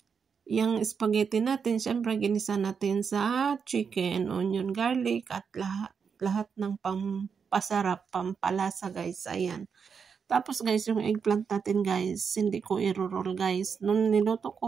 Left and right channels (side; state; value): left; quieter; 6.3 dB